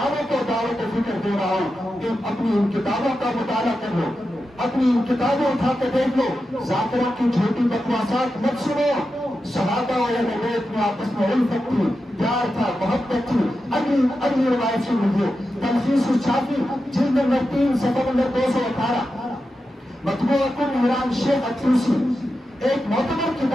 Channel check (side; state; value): both; normal; correlation 0.90